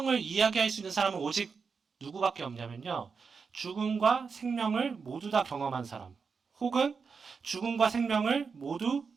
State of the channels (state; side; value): quieter; left; 5.4 dB